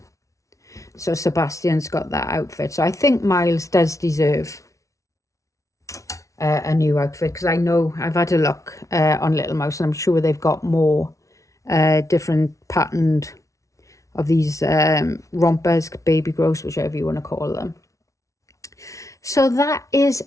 So Sebastian's got that outfit. So I think Miles does deserve a new outfit, because I know I've had a look on Little Mouse, and I'm sure they've got more different patterned of these rompers, baby grows, whichever you want to call them. So that is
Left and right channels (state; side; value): late; right; 0.15 ms